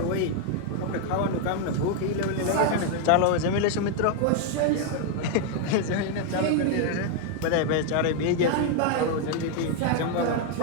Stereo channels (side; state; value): both; different; correlation 0.00